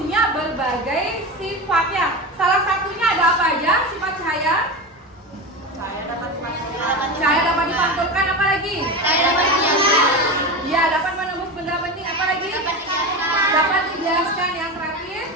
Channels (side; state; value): both; normal; correlation 0.23